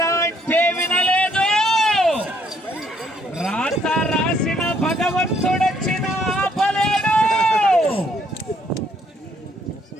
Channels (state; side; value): normal; both; correlation 0.68